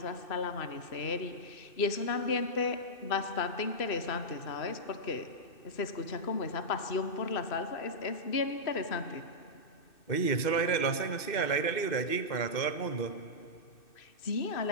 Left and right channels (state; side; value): late; right; 2.6 ms